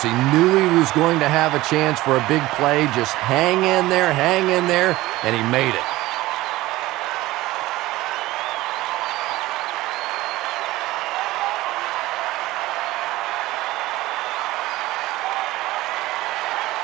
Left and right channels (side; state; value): left; quieter; 17.9 dB